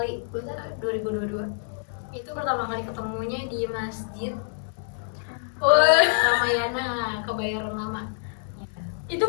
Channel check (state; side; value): silent; right; digital silence